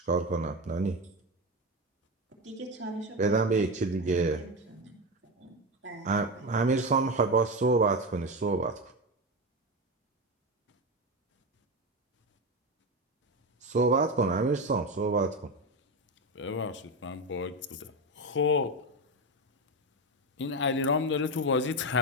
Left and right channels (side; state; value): both; normal; correlation 0.16